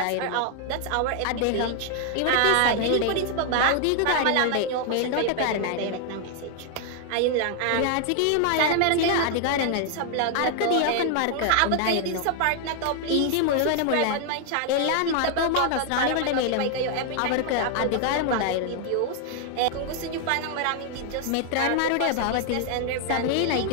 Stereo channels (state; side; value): different; both; correlation 0.00